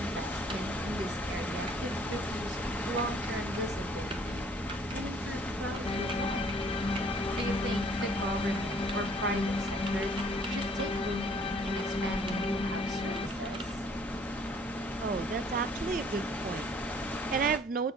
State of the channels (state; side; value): normal; both; correlation 0.58